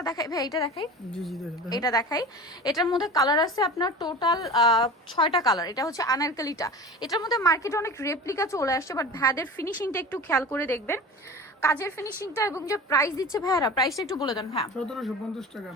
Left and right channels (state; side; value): normal; both; correlation 0.35